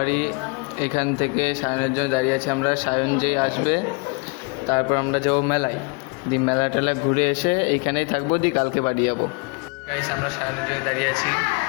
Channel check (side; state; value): right; quieter; 32.3 dB